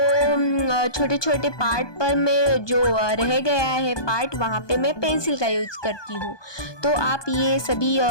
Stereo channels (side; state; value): right; late; 1.2 ms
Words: छोटे छोटे पार्ट पर मैं जो रह गया है पार्ट वहाँ पे मैं पेंसिल का यूज़ करती हूँ। तो आप ये सभी